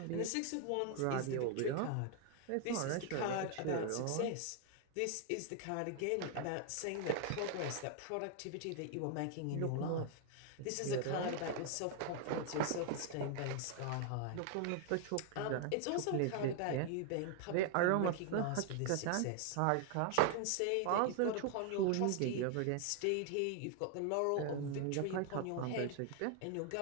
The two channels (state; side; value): different; both; correlation 0.00